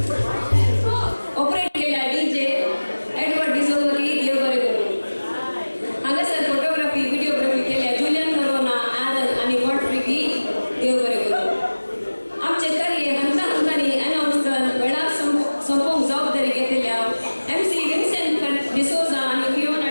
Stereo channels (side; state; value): both; inverted; correlation -1.00